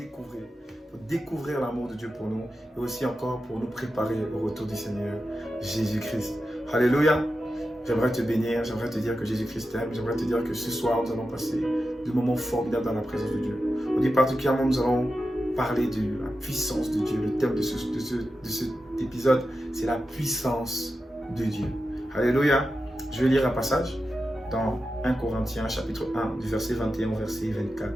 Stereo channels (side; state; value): both; normal; correlation 0.91